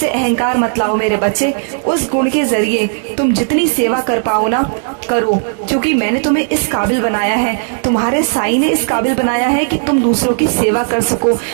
अहंकार मत लाओ मेरे बच्चे। उस गुण के जरिए तुम जितनी सेवा कर पाओ ना करो, क्योंकि मैंने तुम्हें इस काबिल बनाया है, तुम्हारे साईं ने इस काबिल बनाया है कि तुम दूसरों की सेवा कर सको,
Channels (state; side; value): silent; left; digital silence